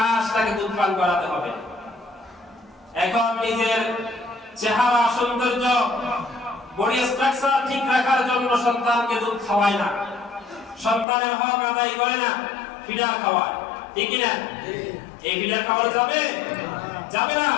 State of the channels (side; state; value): right; drops out; at 11.1 s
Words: তাকে দুধ পান করাতে হবে। এখন নিজের চেহারা, সৌন্দর্য বডি স্ট্রাকচার ঠিক রাখার জন্য সন্তানকে দুধ খাওয়ায় না, সন্তানের হক আদায় করে না, ফিডার খাওয়ায়, ঠিক কি না? এই ফিডার খাওয়ানো যাবে? যাবে না।